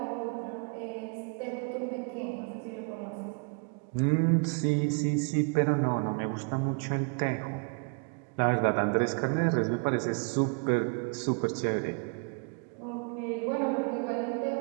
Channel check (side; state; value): left; quieter; 37.4 dB